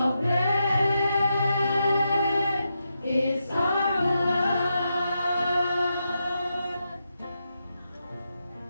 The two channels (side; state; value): both; inverted; correlation -0.85